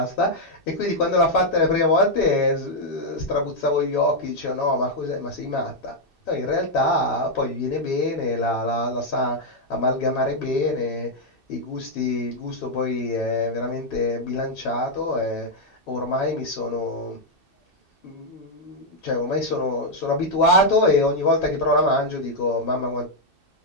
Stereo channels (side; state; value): right; late; 2.6 ms